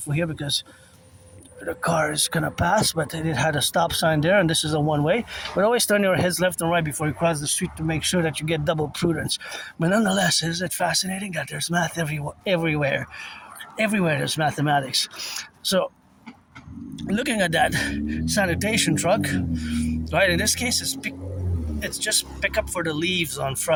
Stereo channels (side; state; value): both; identical; correlation 1.00